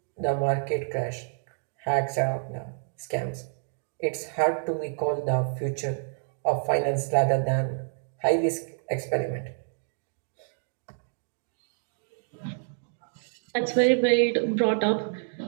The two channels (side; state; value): left; silent; digital silence